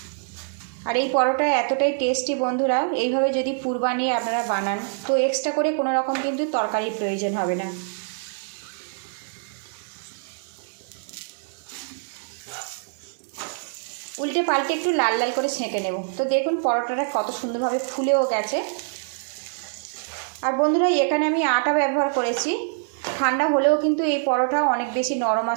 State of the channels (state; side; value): silent; left; 57 dB below the other